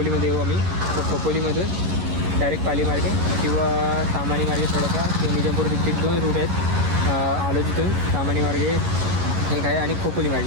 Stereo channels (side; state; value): left; late; 11 ms